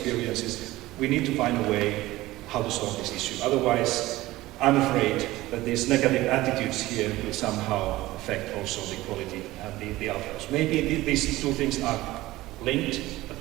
we need to find a way how to solve this issue. Otherwise, I'm afraid that these negative attitudes here will somehow affect also the quality and the outcomes. Maybe these two things are linked, but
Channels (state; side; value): quieter; left; 17.7 dB